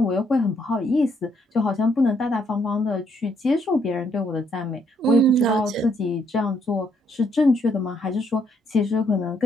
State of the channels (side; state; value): both; normal; correlation 0.71